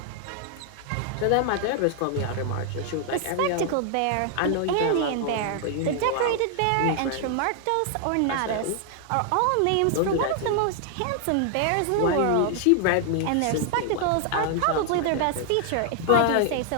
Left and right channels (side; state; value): both; different; correlation 0.00